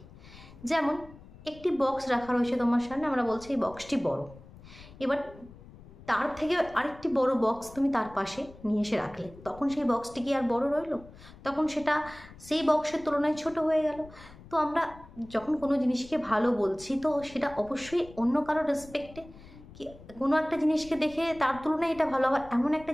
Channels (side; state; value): left; noise; rumble, 20 dB below the sound